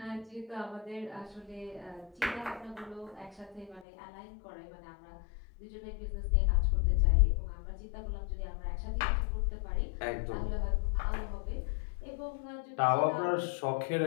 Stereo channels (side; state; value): right; drops out; at 3.9 s